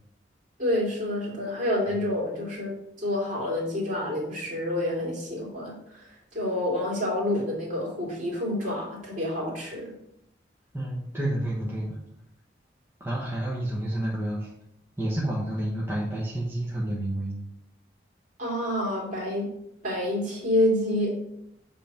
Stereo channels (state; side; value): normal; both; correlation 0.40